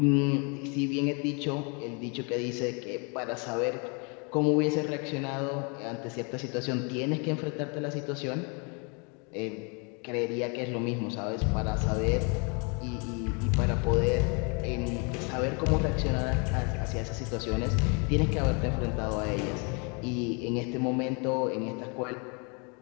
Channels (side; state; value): right; quieter; 33.8 dB